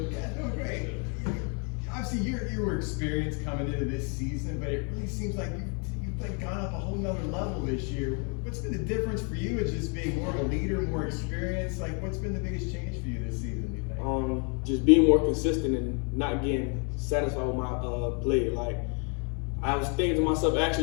Yeah, doing great. Obviously, you were experienced coming into this season, but it really seems like you've like gone up a whole nother level this year. What's been the difference for you as just being more of a leader, more experienced? Like, what's been the biggest change for you this season, you think? Just being more consistent and not getting satisfied with my play. Like, I was thinking to myself,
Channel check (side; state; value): right; quieter; 37.9 dB